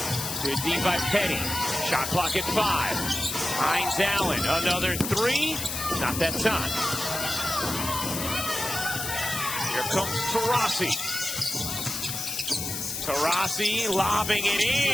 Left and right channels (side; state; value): left; noise; hiss, 4 dB below the sound